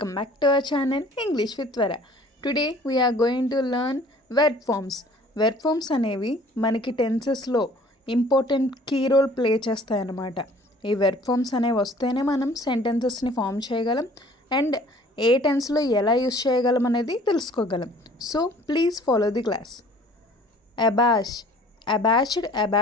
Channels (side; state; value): both; normal; correlation 0.52